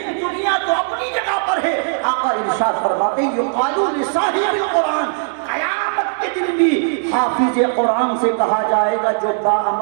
دنیا تو اپنی جگہ پر ہے. آقا ارشاد فرماتے ہیں یقال لصاحب القرآن، قیامت کے دن بھی حافظ قرآن سے کہا جائے گا جو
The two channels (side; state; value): left; silent; 63 dB below the other